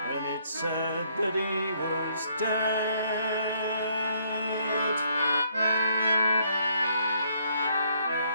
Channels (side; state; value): both; inverted; correlation -0.68